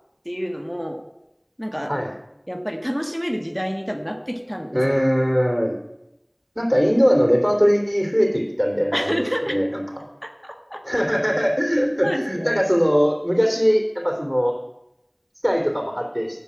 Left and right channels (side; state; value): both; identical; correlation 1.00